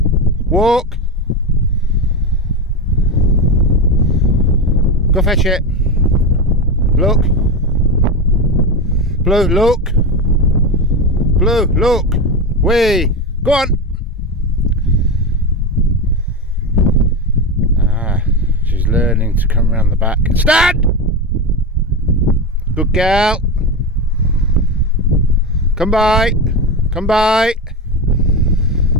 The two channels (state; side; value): normal; both; correlation 0.17